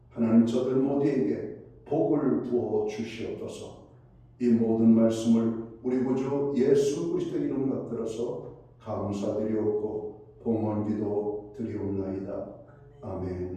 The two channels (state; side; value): identical; both; correlation 1.00